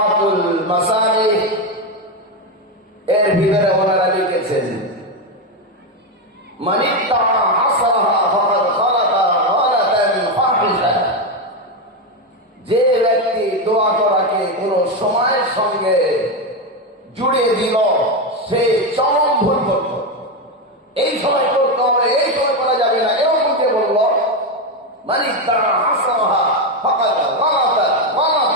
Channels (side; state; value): both; normal; correlation 0.09